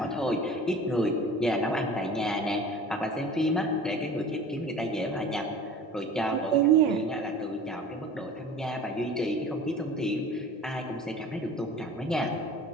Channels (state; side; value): normal; both; correlation 0.41